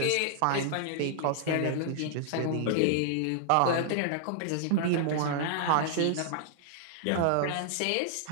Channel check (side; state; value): both; different; correlation -0.01